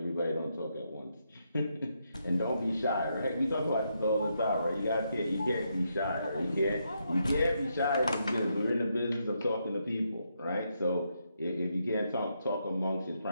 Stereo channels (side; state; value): both; inverted; correlation -0.80